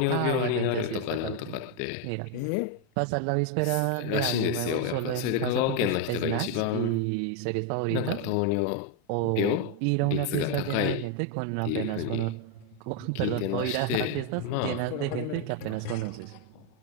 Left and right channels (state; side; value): different; both; correlation 0.01